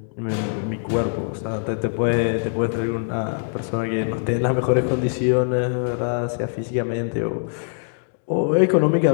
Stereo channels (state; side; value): silent; right; digital silence